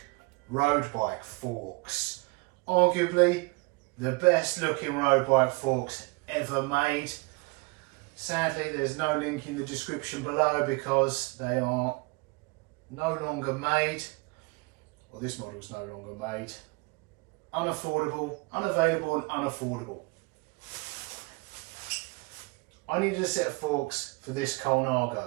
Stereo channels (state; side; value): quieter; left; 27.4 dB